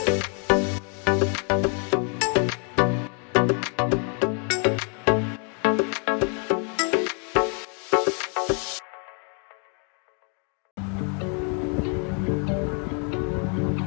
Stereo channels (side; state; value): right; quieter; 39.6 dB